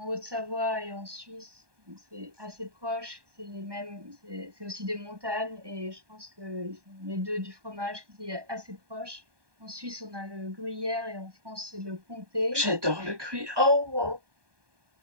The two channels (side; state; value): left; late; 1.2 ms